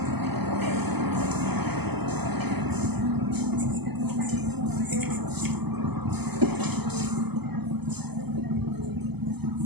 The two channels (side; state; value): left; late; 0.98 ms